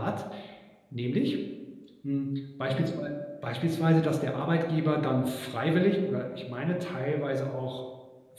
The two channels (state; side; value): identical; both; correlation 1.00